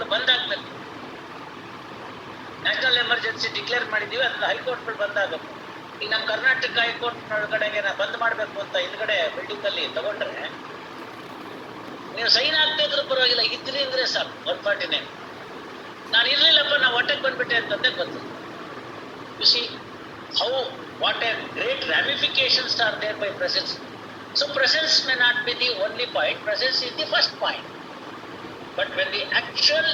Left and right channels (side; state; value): both; identical; correlation 1.00